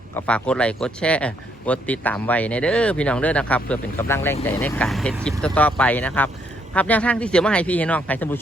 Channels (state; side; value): normal; both; correlation 0.72